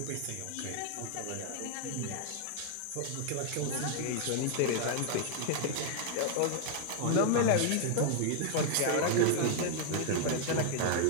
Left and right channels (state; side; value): different; both; correlation 0.00